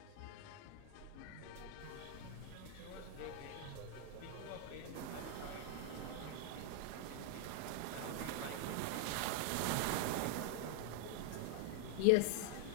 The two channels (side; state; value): both; different; correlation 0.00